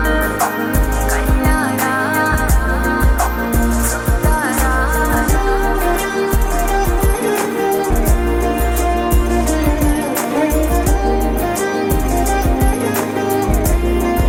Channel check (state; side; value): identical; both; correlation 1.00